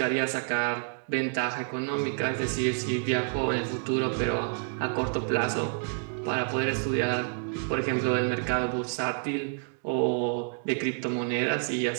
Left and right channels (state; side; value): silent; left; 59 dB below the other